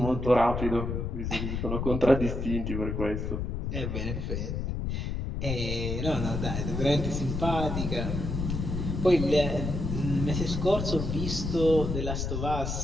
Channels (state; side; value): noise; left; rumble, 3 dB below the sound